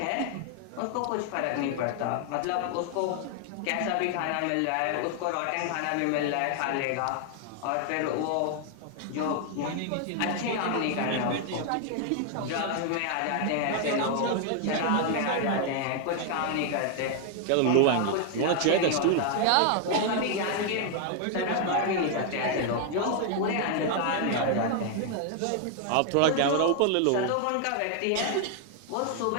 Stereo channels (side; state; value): both; different; correlation 0.00